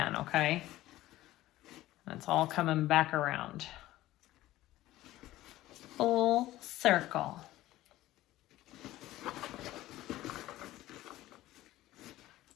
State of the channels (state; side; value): quieter; right; 15.8 dB